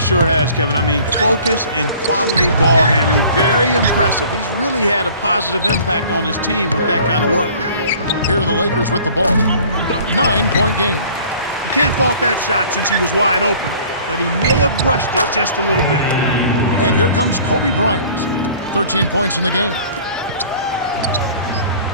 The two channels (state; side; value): inverted; both; correlation -0.50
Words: has, Kevin. I mean, focus and quality ball handling. Very impressive. He's really had a positive impact on his team with that kind of work. Here are the Lakers with the ball. 9-point game. You can't fault that shot since he was wide open, but he may have rushed it just a little bit. And here comes Kobe Bryant. 13 points in the game.